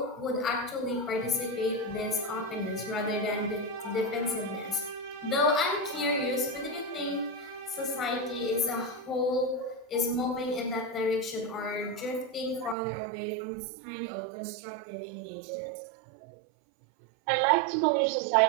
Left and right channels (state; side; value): drops out; left; at 12.8 s